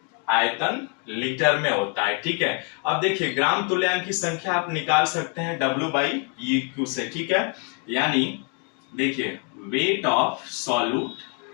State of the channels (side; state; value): right; quieter; 35.1 dB